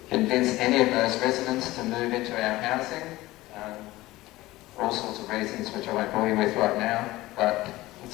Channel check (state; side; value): quieter; right; 18.1 dB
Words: convince any of those residents to move into our housing, for all sorts of reasons which I won't bore you with right now, but